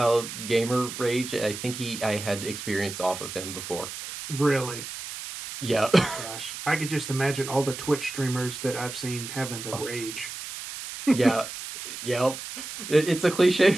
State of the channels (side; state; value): right; noise; hiss, 9 dB below the sound